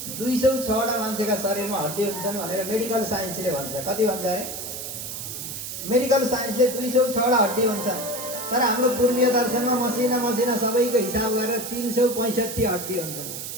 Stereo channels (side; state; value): right; noise; hiss, 7 dB below the sound